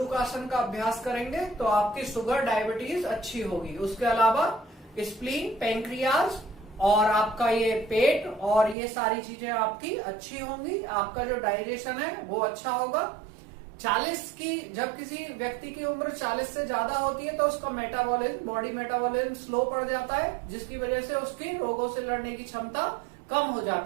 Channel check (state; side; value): drops out; left; at 8.8 s